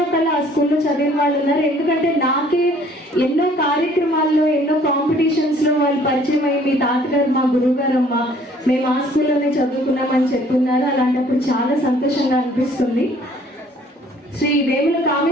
ఒకళ్ళు ఆ స్కూల్లో చదివిన వాళ్ళు ఉన్నారు. ఎందుకంటే నాకే ఎన్నో కార్యక్రమాల్లో, ఎన్నో కాంపిటీషన్స్లో వాళ్ళు పరిచయం అయ్యి మీ తాతగారు మా గురువు గారమ్మ, మేము ఆ స్కూల్లోనే చదువుకున్నామని చెప్తున్నారు. అలాంటప్పుడు చాలా సంతోషంగా అనిపిస్తుంది. శ్రీ వేముల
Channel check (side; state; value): both; normal; correlation 0.57